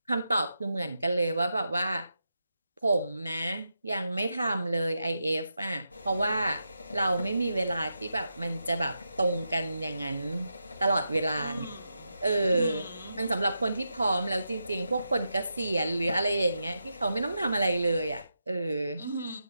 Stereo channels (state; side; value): inverted; both; correlation -0.87